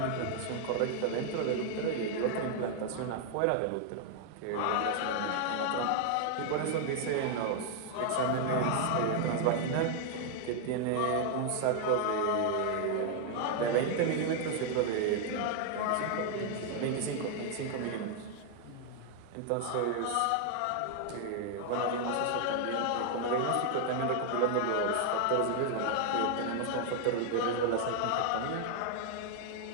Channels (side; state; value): both; different; correlation 0.00